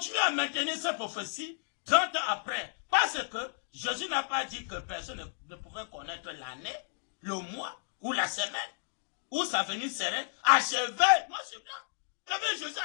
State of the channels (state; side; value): silent; right; digital silence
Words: à maintenir cette prophétie 30 ans après. Parce que Jésus n'a pas dit que personne ne pouvait connaître l'année, le mois ou la semaine, où sa venue serait achevée. Moi, c'est blanc. Il y avait Jésus